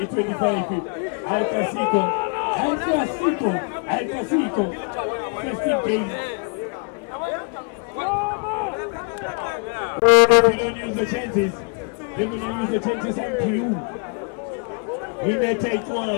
Al Casico, 15 games. We don't use the chances. We will use the chances unto you. We may take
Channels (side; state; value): right; quieter; 39.9 dB